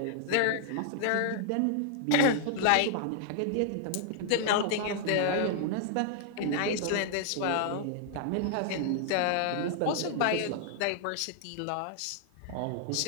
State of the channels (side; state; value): both; different; correlation 0.00